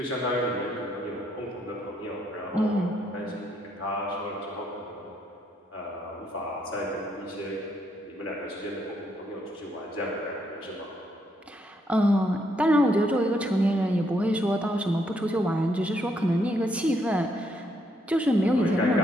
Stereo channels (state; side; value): normal; both; correlation 0.74